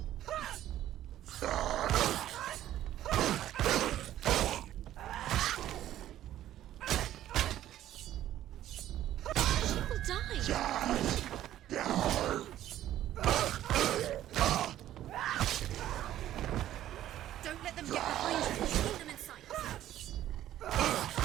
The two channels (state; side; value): quieter; left; 12.7 dB